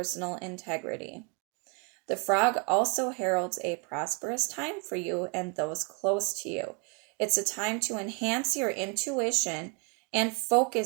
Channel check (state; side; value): quieter; left; 34.7 dB